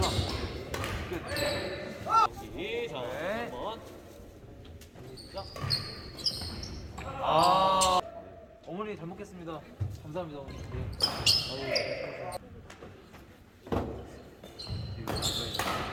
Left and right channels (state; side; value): identical; both; correlation 1.00